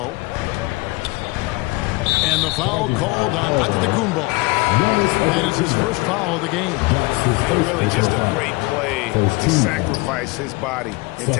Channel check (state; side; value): quieter; right; 24.1 dB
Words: And the foul called on Antetokounmpo. That is his first foul of the game. Really just a great play to sacrifice his body and